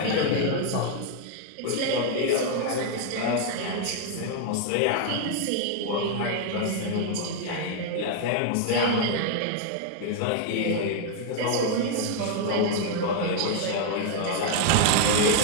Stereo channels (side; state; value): both; different; correlation 0.00